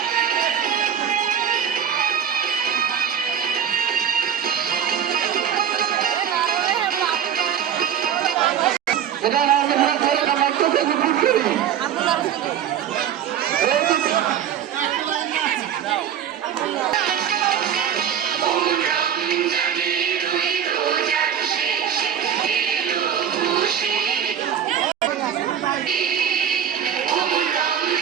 এটা না মারতেছে গুড করি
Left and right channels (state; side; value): quieter; left; 9.0 dB